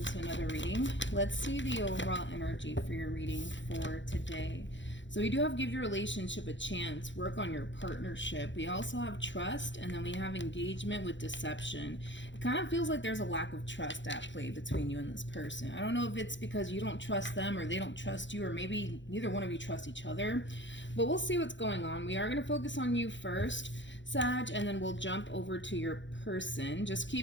to another reading. Let's see the overall energy for your reading for today. So we do have give your relationship a chance, work on your partnership. We also have trust, and then we have engagement with deception. It kind of feels like there's a lack of trust at play between you and this person. I don't know if it's because you don't trust them or they don't trust you, or maybe neither one of you trust each other, but we'll see what's going on. We are going to focus on you first, Sag, and then we'll jump over to your person. Just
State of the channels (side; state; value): right; late; 0.54 ms